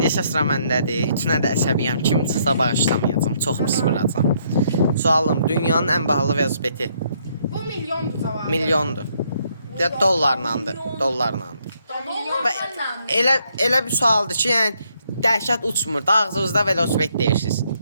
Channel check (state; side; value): inverted; both; correlation -0.71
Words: isə sıra məndədir. Üçünə də əsəbiyəm. Kim çıxsa bağışlamayacağam. Çox pis vuracam. Sualım, dünyanın ən bahalı velosipedi Bu milyondur cavabı. milyondur. Ya dollarlandır. Dollarlandır. Elə bir sualdır ki, yəni dəhşət uçmur. Da ağzınızda velosiped deyirsiniz.